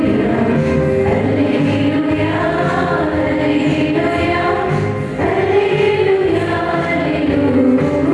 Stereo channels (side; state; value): both; identical; correlation 1.00